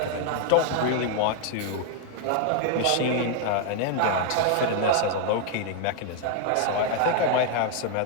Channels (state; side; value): different; both; correlation 0.00